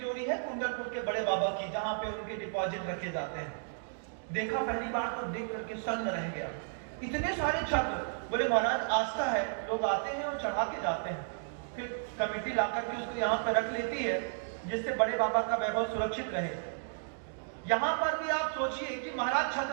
है कुंडलपुर के बड़े बाबा की, जहां पे उनके डिपॉजिट रखे जाते हैं। देखा पहली बार तो देख करके सन्न रह गया, इतने सारे छत्र। बोले महाराज आस्था है, लोग आते हैं और चढ़ा के जाते हैं, फिर कमेटी ला करके उसको यहाँ पे रख लेती है, जिससे बड़े बाबा का वैभव सुरक्षित रहे। यहाँ पर भी आप सोचिए कि महाराज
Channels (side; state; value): left; silent; digital silence